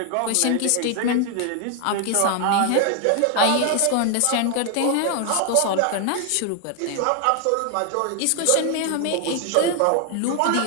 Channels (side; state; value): both; different; correlation 0.00